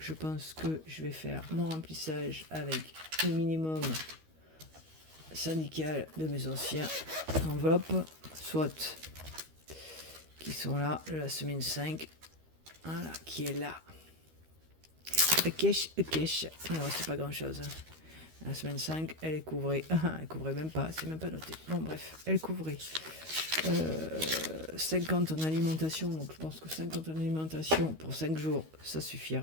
pense que je vais faire mon remplissage avec le minimum syndical de mes anciens enveloppes, soit qui sont là, la semaine 5, voilà, qui est là. Cash. Alors c'est pas grand chose. La semaine 5, elle est couvrée. Elle couvrait même pas, c'est même pas noté. Bon bref, elle couvrait 50 en alimentation, donc je pense que 50 en alimentation pour 5 jours, ça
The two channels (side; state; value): left; late; 13 ms